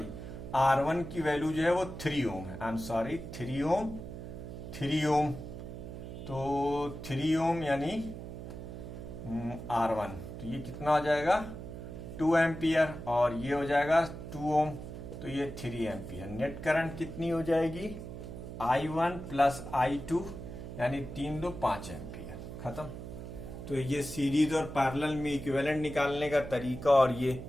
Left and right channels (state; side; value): noise; right; hum, 10 dB below the sound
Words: R1 की वैल्यू जो है वो 3 ओम है, आई एम सॉरी 3 ओम। तो 3 ओम यानी R1, तो ये कितना हो जाएगा 2 एम्पियर और ये हो जाएगा 2 ओम, तो ये 3 एम्पियर। नेट करंट कितनी हो जाएगी I1 + I2 यानी 3 2 5 एम्पियर, खत्म। तो ये सीरीज और पैरेलल में इक्विवेलेंट निकालने का तरीका। और ये